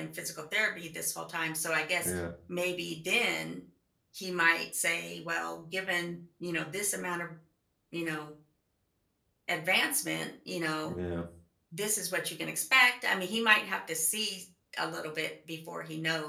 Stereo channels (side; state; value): both; identical; correlation 1.00